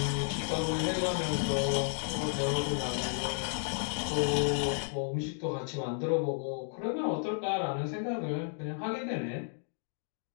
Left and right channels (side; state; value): right; silent; 56 dB below the other